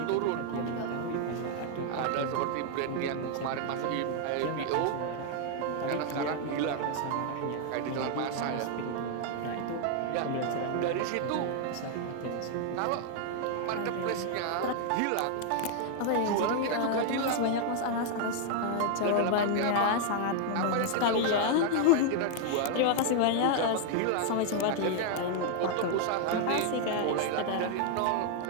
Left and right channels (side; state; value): both; different; correlation 0.00